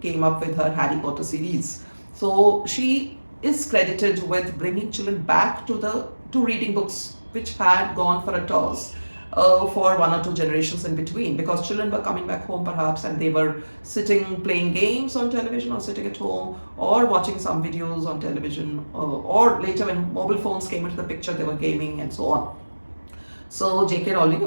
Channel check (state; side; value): inverted; both; correlation -1.00